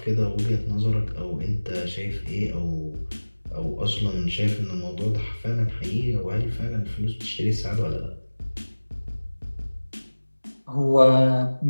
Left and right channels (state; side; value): inverted; both; correlation -1.00